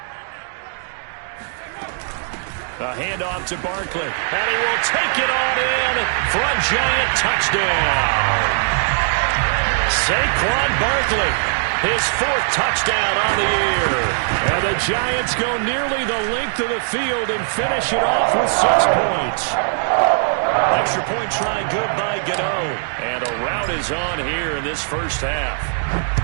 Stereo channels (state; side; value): silent; left; 66 dB below the other